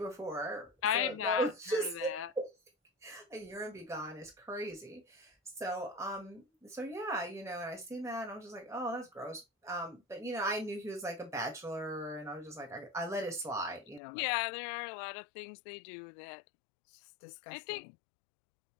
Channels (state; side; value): drops out; right; at 14.0 s